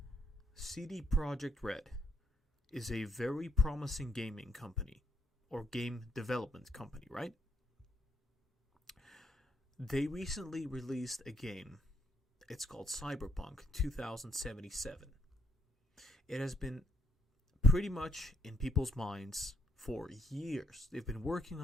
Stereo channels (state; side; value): normal; both; correlation 0.75